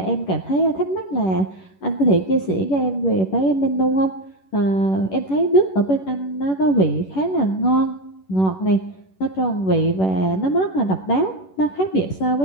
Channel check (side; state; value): right; late; 11 ms